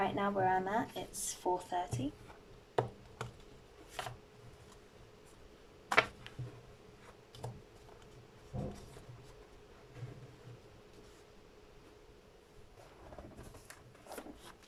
now where I'm at, it's 4:30.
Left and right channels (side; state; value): both; identical; correlation 1.00